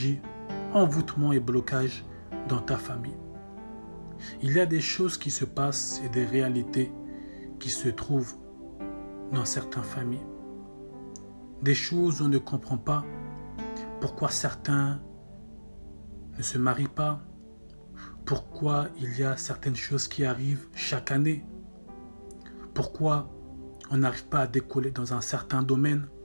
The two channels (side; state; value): both; inverted; correlation -1.00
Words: envoûtement et blocage dans ta famille. Il y a des choses qui se passent et des réalités qui se trouvent dans certaines familles. Des choses où on ne comprend pas pourquoi certains ne se marient pas, pourquoi il y a certaines choses qui arrivent chaque année, pourquoi on n'arrive pas à décoller dans un certain domaine.